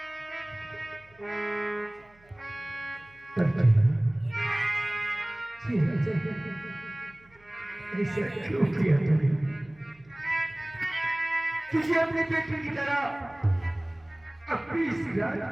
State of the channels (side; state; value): right; noise; hum, 29 dB below the sound